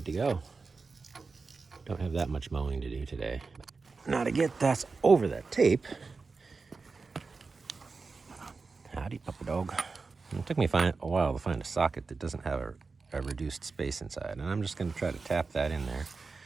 to go. Don't have that much mowing to do today. Now to get that over that tape, howdy puppy dog. It took me a while to find a socket that doesn't have a reduced space inside, and I'm just gonna try to tap that in there.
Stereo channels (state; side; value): quieter; left; 4.3 dB